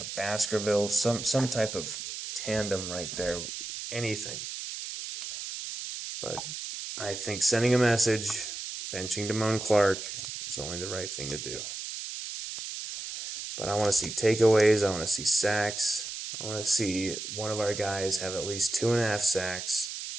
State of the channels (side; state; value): right; noise; hiss, 7 dB below the sound